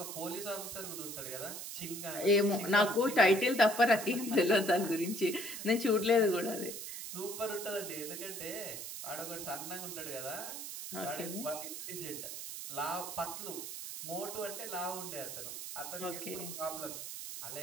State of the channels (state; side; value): noise; right; hiss, 7 dB below the sound